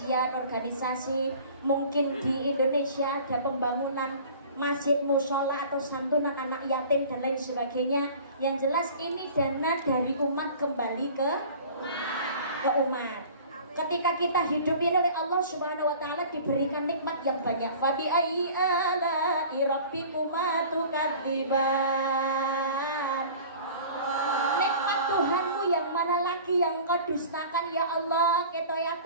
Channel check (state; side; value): inverted; both; correlation -0.44